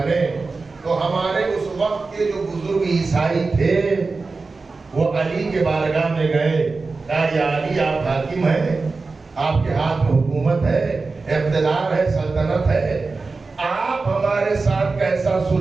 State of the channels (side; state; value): left; quieter; 4.0 dB